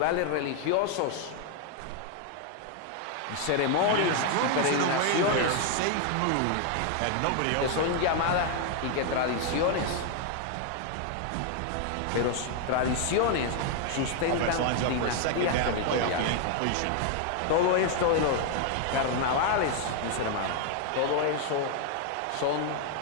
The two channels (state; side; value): different; both; correlation 0.00